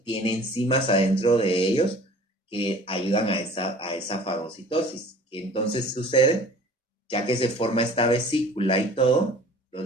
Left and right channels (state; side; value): normal; both; correlation 0.46